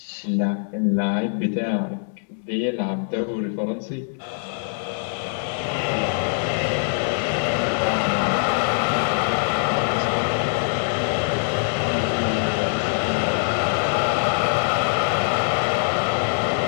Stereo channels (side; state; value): right; silent; digital silence